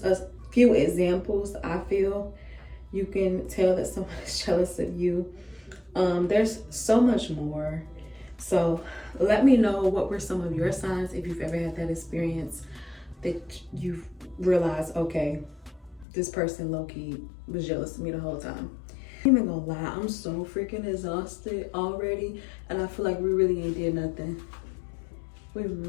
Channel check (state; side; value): drops out; right; at 16.1 s